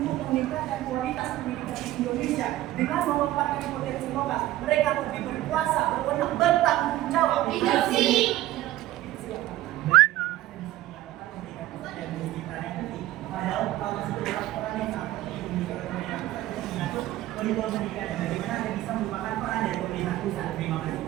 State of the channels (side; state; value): left; quieter; 15.2 dB